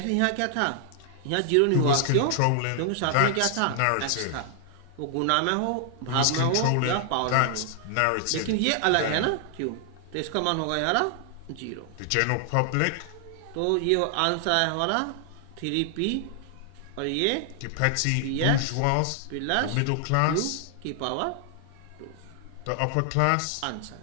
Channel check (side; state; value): both; different; correlation 0.00